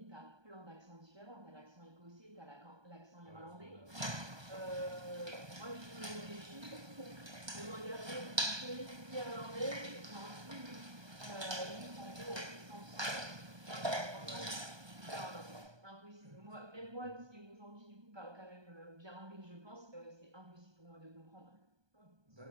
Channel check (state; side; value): late; left; 1.2 ms